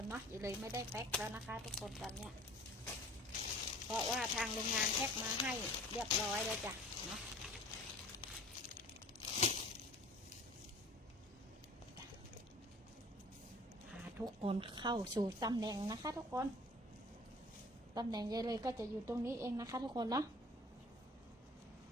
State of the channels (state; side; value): normal; both; correlation 0.47